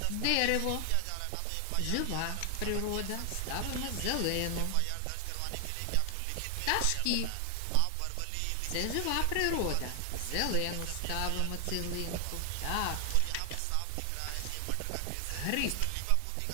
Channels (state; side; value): different; both; correlation 0.00